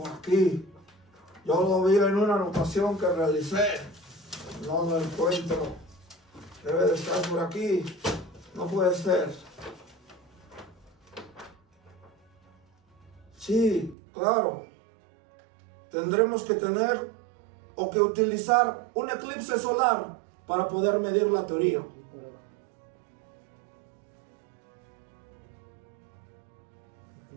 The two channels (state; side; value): drops out; left; at 14.0 s